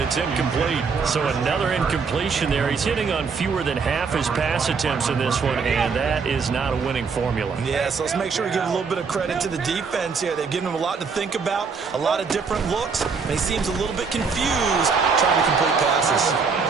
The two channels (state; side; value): quieter; left; 5.2 dB